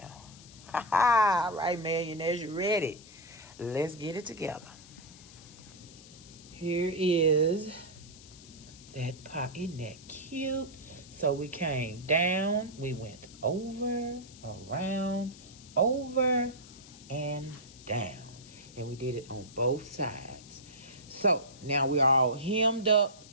Ha ha! All right, millionaires, you ready? Let's get it together. Here is that pocket. Isn't that cute? So we came down, we went over, around, over, and down. And we did it on both sides. So now we're all hemmed up.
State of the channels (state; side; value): noise; left; hiss, 20 dB below the sound